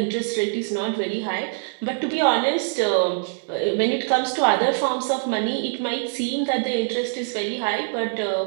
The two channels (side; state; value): left; silent; digital silence